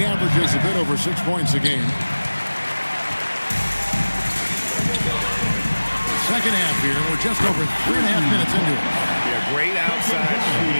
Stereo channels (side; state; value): both; inverted; correlation -1.00